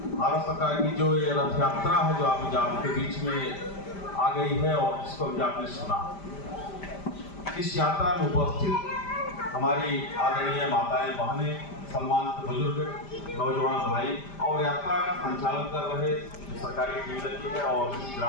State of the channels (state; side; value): late; right; 5.0 ms